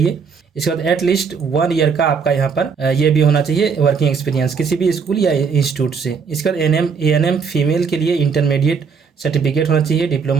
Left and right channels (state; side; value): quieter; left; 5.8 dB